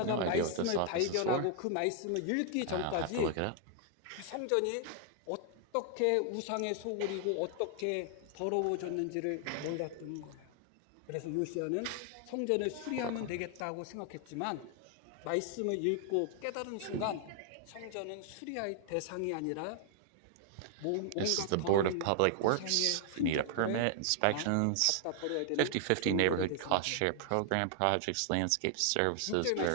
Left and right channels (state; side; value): different; both; correlation 0.00